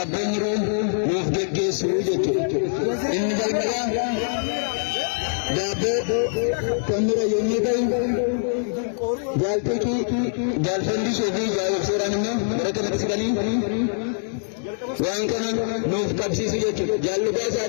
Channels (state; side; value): silent; right; digital silence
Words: Mufdege Sujetu Inni Jalmaya Dabe Kamera Yunikai Jalpiki Jalfandi Sofi Jal Seranino Garakanaki Sigani Wankana Nuf Kalsisujetu Jaluka